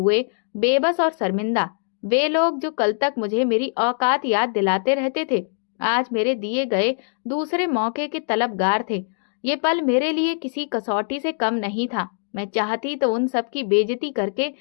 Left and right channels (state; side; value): silent; right; 64 dB below the other